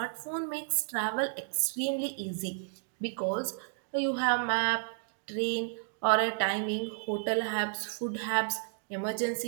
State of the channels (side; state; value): left; silent; digital silence